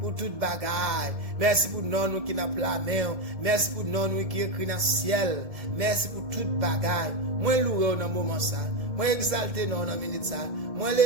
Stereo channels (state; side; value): late; left; 1.7 ms